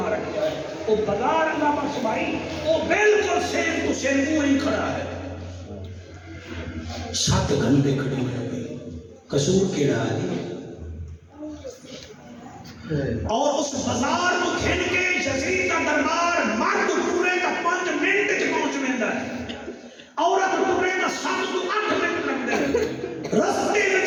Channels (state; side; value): identical; both; correlation 1.00